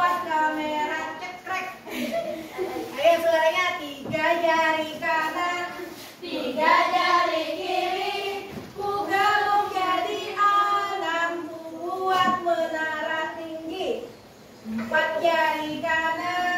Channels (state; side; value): identical; both; correlation 1.00